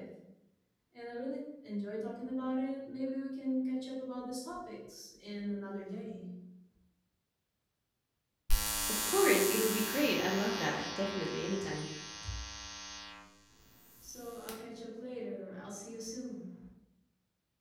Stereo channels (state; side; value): identical; both; correlation 1.00